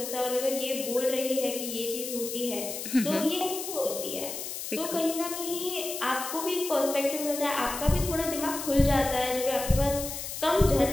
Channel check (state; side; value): noise; left; hiss, 7 dB below the sound